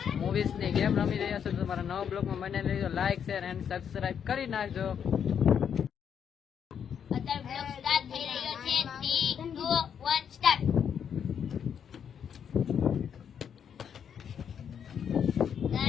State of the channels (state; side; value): quieter; right; 8.0 dB